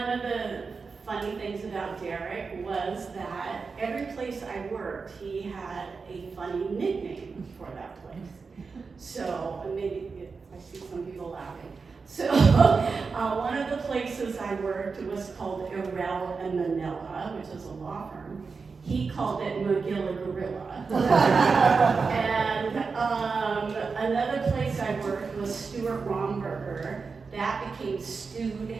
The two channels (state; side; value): quieter; left; 4.8 dB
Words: of the funny things about Darrick was that every place I worked, he had a funny nickname for that place. So, maybe, I see some people laughing. So, one of the places I worked was called Irel and Manila, which is a law firm. He called it Magilla Gorilla. And another place I worked was Stuart Romberger. That became Stewed